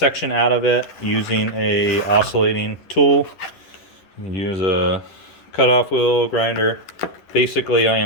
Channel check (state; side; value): late; right; 11 ms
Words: out of it using a oscillating tool. Use a cutoff wheel grinder. Basically, I